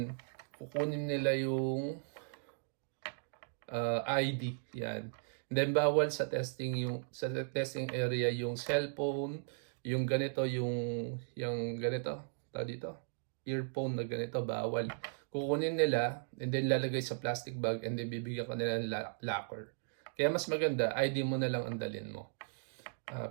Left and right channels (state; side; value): silent; left; digital silence